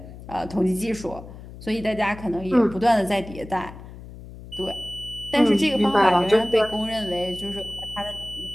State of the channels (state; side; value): noise; left; hum, 15 dB below the sound